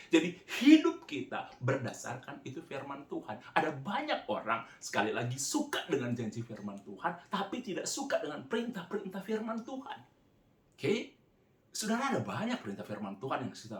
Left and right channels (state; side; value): identical; both; correlation 1.00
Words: Jadi hidup kita berdasarkan itu firman Tuhan. Ada banyak orang sekali lagi suka dengan janji firman Tuhan, tapi tidak suka dengan perintah-perintah firman Tuhan. Oke? Saudara, ada banyak perintah firman Tuhan yang